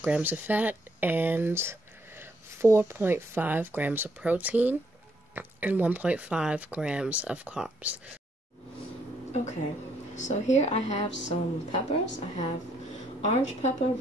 grams of fat, and 4.5 grams of protein, and 1.5 grams of carbs. Okay, so here I have some peppers. I have orange pepper,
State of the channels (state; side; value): normal; both; correlation 0.71